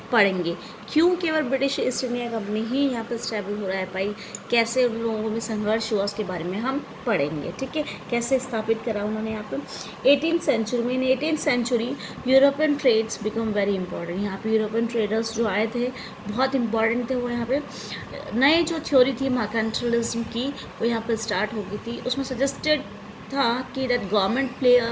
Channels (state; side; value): identical; both; correlation 1.00